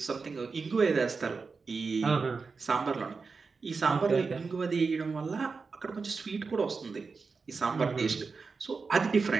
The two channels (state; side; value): quieter; left; 4.7 dB